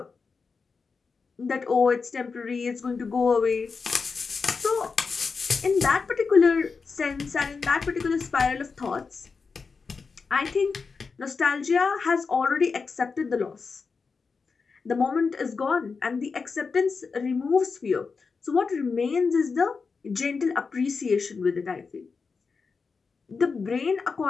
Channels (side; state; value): right; quieter; 4.9 dB